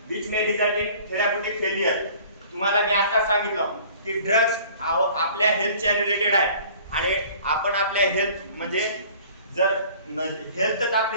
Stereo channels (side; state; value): both; inverted; correlation -0.50